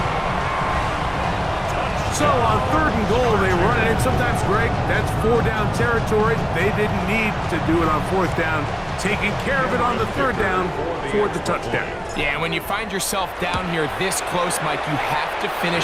So on third and goal, they run it in. Sometimes, Greg, that's 4-down territory. They didn't need to do it on fourth down. Taking care of it on the third down for the touchdown. Yeah, and when you find yourself down here this close, Mike, you have to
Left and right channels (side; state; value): both; identical; correlation 1.00